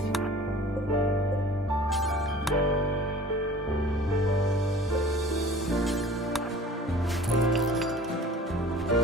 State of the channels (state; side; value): normal; both; correlation 0.45